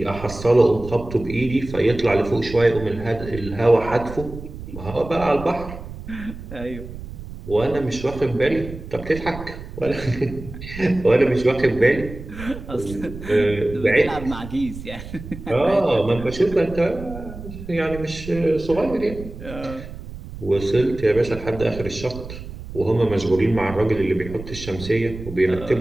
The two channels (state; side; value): noise; right; rumble, 12 dB below the sound